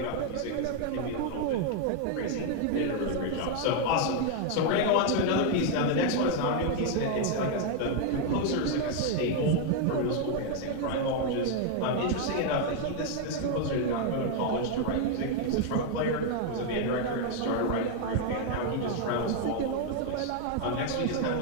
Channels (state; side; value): different; both; correlation 0.01